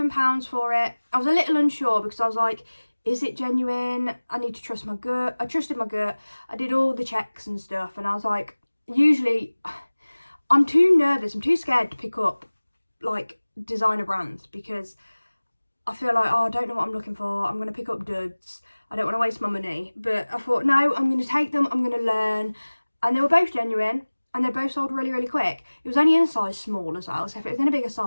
for it. I was a little unsure because I was like, is it genuine? I need to trust my gut. I trusted my gut. I did all the checks and stuff, and I was like, usually I'm too nervous, I'm too scared to pick up like designer brands because I feel like, oh, I don't know what I'm looking for. I'm going to pick up duds. I don't want to waste my money. But I thought, no, I'm going to take them. I'm going to learn. And they were both genuine and they both sold really, really quick. It was only in a size small as well. So if it was in a bigger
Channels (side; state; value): both; inverted; correlation -1.00